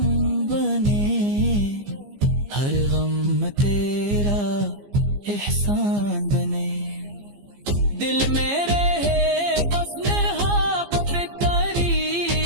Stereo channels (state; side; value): late; left; 15 ms